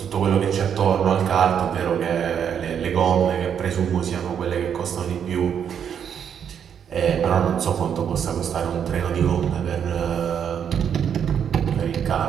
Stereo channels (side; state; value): left; quieter; 8.2 dB